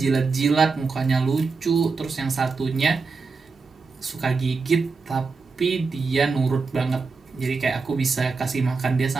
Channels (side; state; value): left; quieter; 4.5 dB